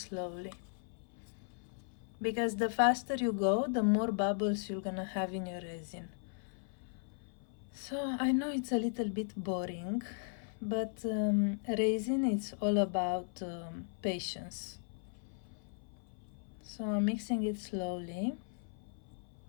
because the faster you go, the more bubbles you're gonna have in your resin. So I know it's a little bit boring, but resin, it's all about patience. So I'm mixing it slowly.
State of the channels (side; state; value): right; silent; 53 dB below the other